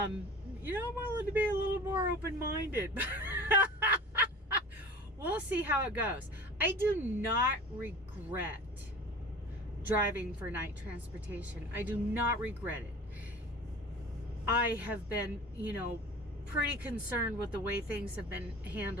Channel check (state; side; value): normal; both; correlation 0.39